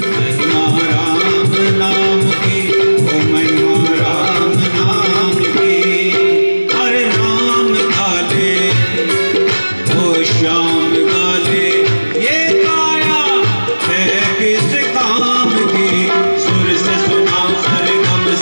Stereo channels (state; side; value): inverted; both; correlation -1.00